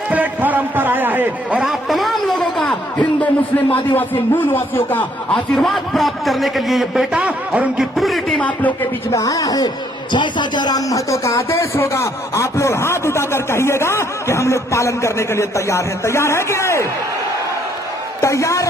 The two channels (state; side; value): normal; both; correlation 0.68